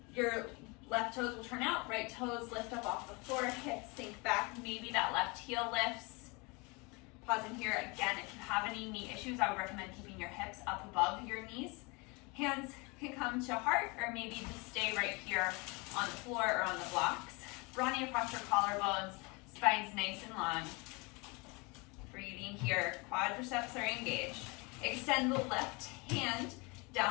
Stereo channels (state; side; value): quieter; right; 28.1 dB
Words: Your left toes will turn out, right toes lift up off the floor, hips sink back, maybe that left heel lifts. Pausing here again, if you have any knee issues, I would recommend keeping your hips up above your knees. Hands can come to heart, or maybe just stay right here on the floor or on the blocks. Broadening across your collarbones, spine's nice and long. Breathing here, quadriceps are engaged. Extend the left hand